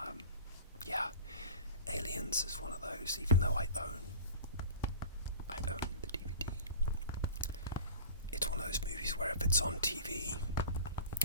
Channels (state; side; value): inverted; both; correlation -0.37